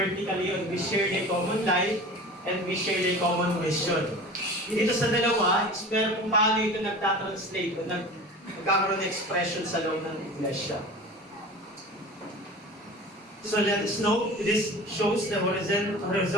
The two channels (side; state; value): both; normal; correlation 0.37